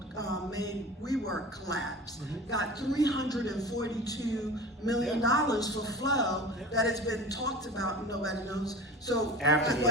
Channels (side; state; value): both; normal; correlation 0.35